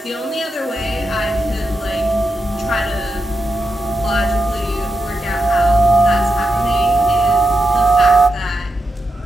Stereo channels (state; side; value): normal; both; correlation 0.86